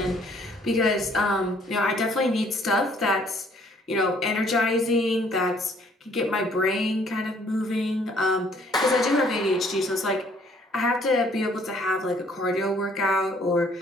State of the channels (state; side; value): normal; both; correlation 0.62